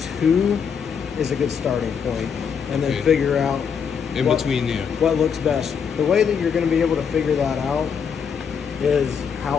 2 is a good starting point, and then Okay. figure out In between there. what looks best. The way that you're going to be able to figure that out is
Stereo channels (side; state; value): right; quieter; 6.8 dB